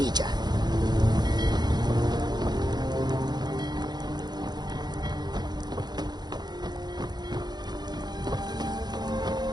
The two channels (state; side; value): late; left; 0.20 ms